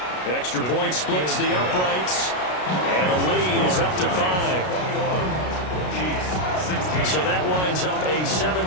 extra point splits the uprights, and the lead is up to 5. So that winds up a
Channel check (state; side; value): late; right; 33 ms